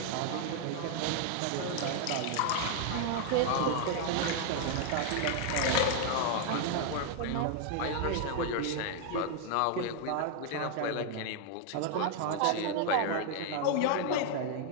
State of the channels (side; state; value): both; different; correlation 0.00